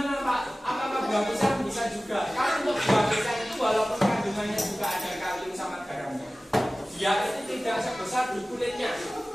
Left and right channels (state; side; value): normal; both; correlation 0.97